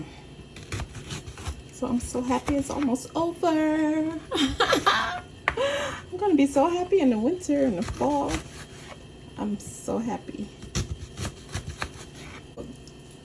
So I'm so happy it's almost over. I'm gonna be so happy in the winter and the fall. I'm so happy.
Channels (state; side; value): identical; both; correlation 1.00